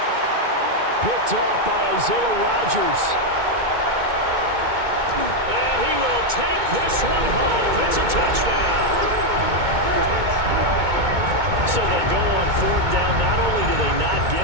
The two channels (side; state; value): left; late; 2.2 ms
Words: Picked off by Isaiah Rodgers. And he will take this one home. It's a touchdown. So they go on 4th down. Not only do they not